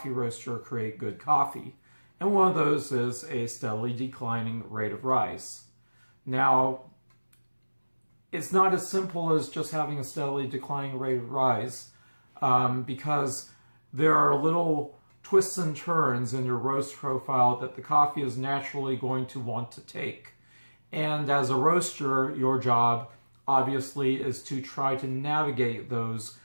roaster create good coffee. And one of those is a steadily declining rate of rise. Now, it's not as simple as just having a steadily declining rate of rise because there are little twists and turns in your roast profile that the coffee is naturally going to want to take. And as a roaster, your job obviously is to try to navigate those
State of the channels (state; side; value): inverted; both; correlation -1.00